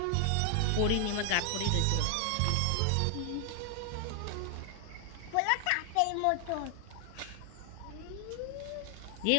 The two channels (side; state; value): both; different; correlation 0.00